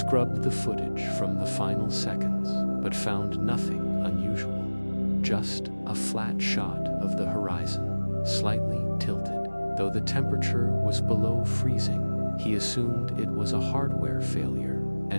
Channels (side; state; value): both; inverted; correlation -1.00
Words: the footage from the final seconds, but found nothing unusual. Just a flat shot of the horizon, slightly tilted. Though the temperature was below freezing, he assumed it was a hardware failure